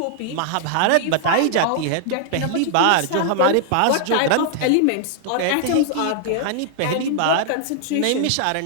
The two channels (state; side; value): different; both; correlation -0.01